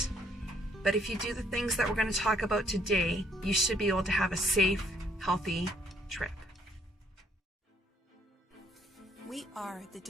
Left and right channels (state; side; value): normal; both; correlation 0.66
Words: But if you do the things that we're going to talk about today, you should be able to have a safe, healthy trip. We are the